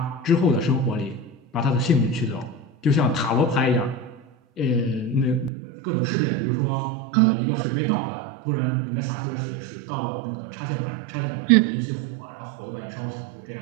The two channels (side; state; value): left; drops out; at 5.5 s